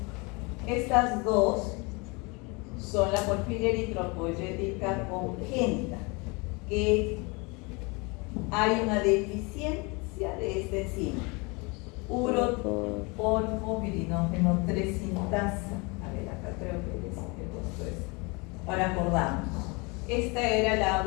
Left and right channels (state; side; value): quieter; right; 28.4 dB